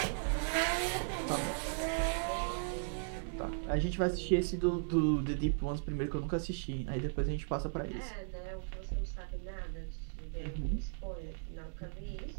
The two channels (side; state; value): left; silent; digital silence